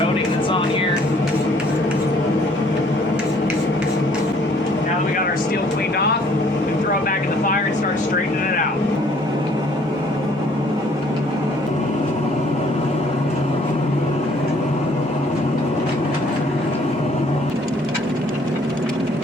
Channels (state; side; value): normal; both; correlation 0.60